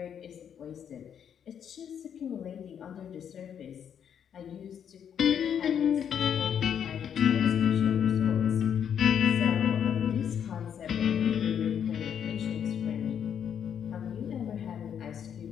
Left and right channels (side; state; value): right; quieter; 8.4 dB